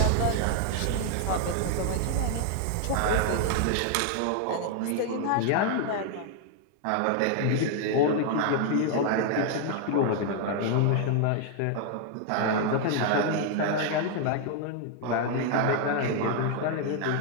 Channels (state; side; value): different; both; correlation 0.00